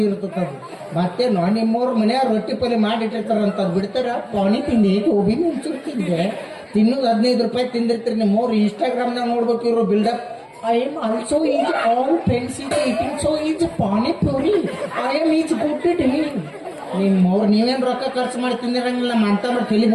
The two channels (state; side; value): identical; both; correlation 1.00